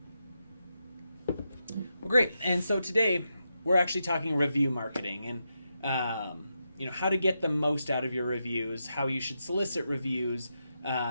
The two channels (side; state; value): both; inverted; correlation -0.86